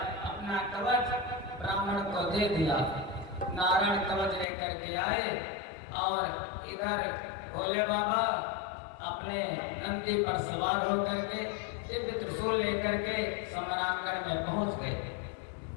अपना कवच ब्राह्मण को दे दिया। नारायण कवच लेकर के आए और इधर भोले बाबा अपने नंदी पर सवार होकर के दिव्य त्रिशूल लेकर के समरांगण में पहुंच गए।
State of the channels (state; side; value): drops out; right; at 4.5 s